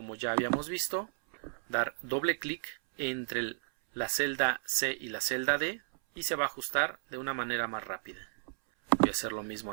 ya habíamos visto, dar doble clic entre la celda C y la celda D y se va a ajustar de una manera más rápida. Voy a hacer lo mismo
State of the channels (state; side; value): silent; left; 56 dB below the other